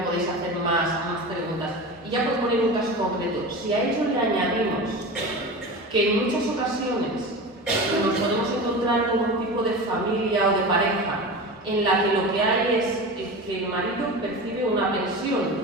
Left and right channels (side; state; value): both; normal; correlation 0.29